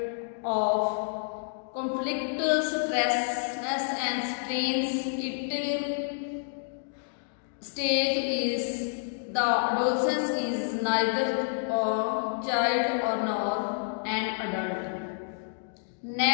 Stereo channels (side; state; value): right; silent; digital silence